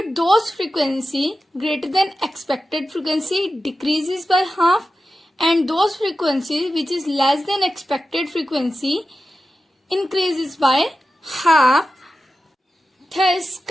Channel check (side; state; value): both; normal; correlation 0.92